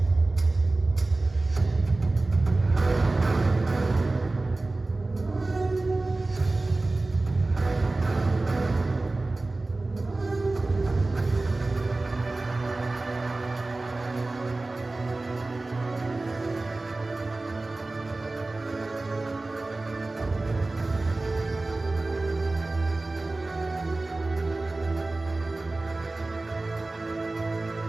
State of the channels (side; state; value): left; quieter; 3.1 dB